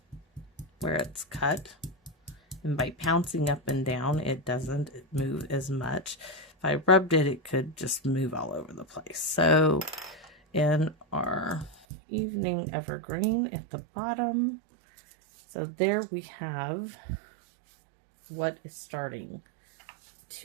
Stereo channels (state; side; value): drops out; left; at 11.8 s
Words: where it's cut. And by pouncing up and down, it doesn't move as much. If I rubbed it, it could just move all over the place. So in our evening evergreen at the bottom, so there we have what is starting